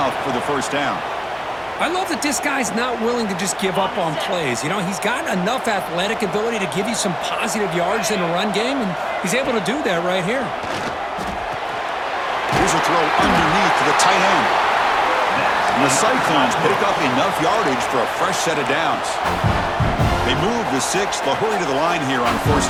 for the first down. I love that this guy's not willing to just give up on plays. You know, he's got enough athletic ability to give you some positive yards in the run game, and he's able to do that right here. Here's a throw underneath to the tight end. And the Cyclones pick up enough yardage for a fresh set of downs. They move the 6th. They'll hurry to the line here on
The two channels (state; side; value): identical; both; correlation 1.00